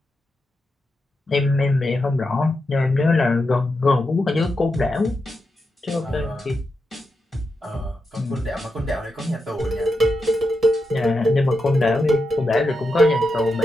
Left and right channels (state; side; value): normal; both; correlation 0.87